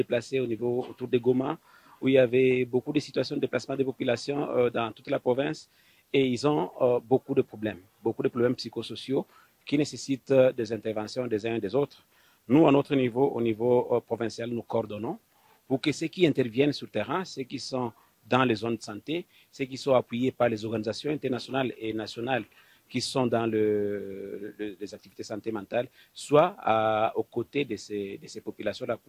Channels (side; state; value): both; identical; correlation 1.00